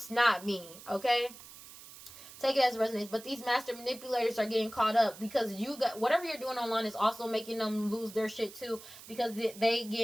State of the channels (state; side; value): noise; right; hiss, 17 dB below the sound